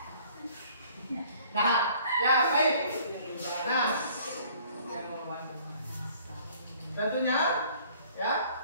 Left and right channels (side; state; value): both; inverted; correlation -0.56